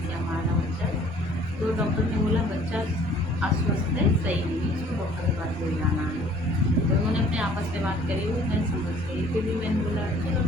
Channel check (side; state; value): both; normal; correlation 0.54